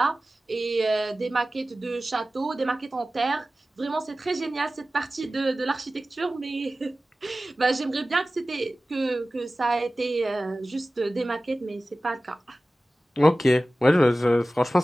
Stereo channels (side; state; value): both; normal; correlation 0.96